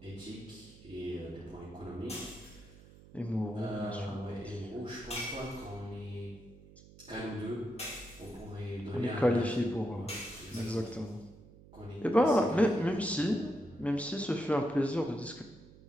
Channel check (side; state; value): right; noise; hum, 21 dB below the sound